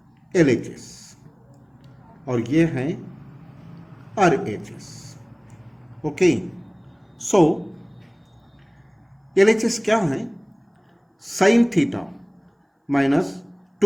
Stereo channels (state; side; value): identical; both; correlation 1.00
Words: LHS और ये है RHS। ओके, सो LHS क्या है, sine theta minus